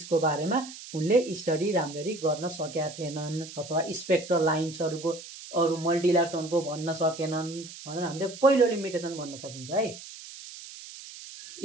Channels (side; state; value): right; noise; hiss, 14 dB below the sound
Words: बारेमा उनले स्टडी राम्ररी गर्न सकेका थिएनन् अथवा स्पेक्ट्रल लाइन्सहरूको अरू मल्टी इलेक्ट्रोनको भन्न सकेनन् भनेर हामीले पहिलो लिमिटेसन भन्न सकिन्छ है।